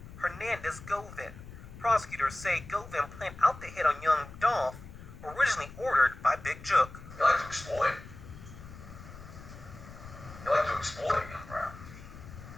Hernandez Govin. Prosecutors say Govin planned out the hit on Young Dolph, originally ordered by Big Jook. You like to exploit. You like to exploit young rap.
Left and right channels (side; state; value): left; noise; rumble, 15 dB below the sound